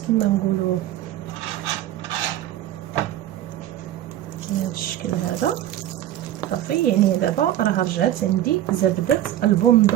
كما نقولوا بهذا الشكل هذا صافي. يعني دابا راه رجعت عندي زبده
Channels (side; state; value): left; quieter; 12.5 dB